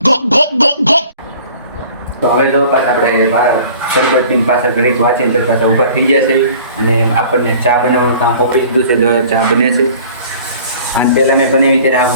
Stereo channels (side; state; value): both; inverted; correlation -0.48